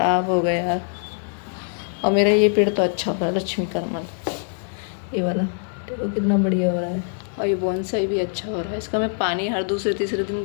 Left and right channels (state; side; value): silent; right; digital silence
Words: हो गए यार, और मेरा ये पेड़ तो अच्छा हो रहा है, लक्ष्मी करमल, ये वाला देखो कितना बढ़िया हो रहा है। और ये बोनसाई भी अच्छा हो रहा है, इसका मैं पानी हर दूसरे-तीसरे